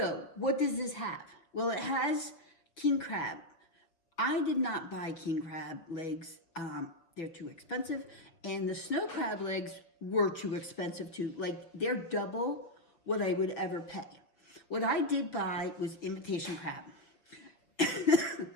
what does this have? Well, it has king crab. I did not buy king crab legs. They're too expensive. And the snow crab legs were too expensive too. Like, they're double what I would ever pay. What I did buy was imitation crab.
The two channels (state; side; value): late; right; 6.0 ms